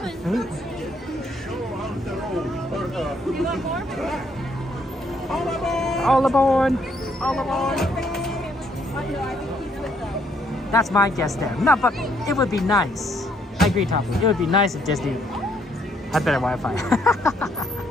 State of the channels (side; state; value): both; normal; correlation 0.69